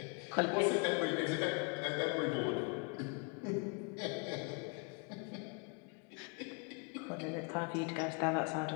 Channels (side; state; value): right; quieter; 34.5 dB